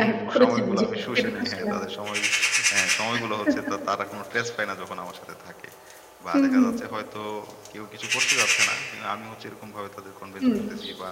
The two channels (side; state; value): both; identical; correlation 1.00